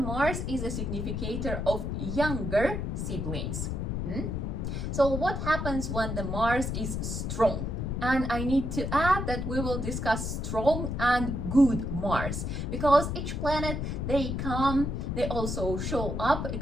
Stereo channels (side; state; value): left; noise; rumble, 2 dB below the sound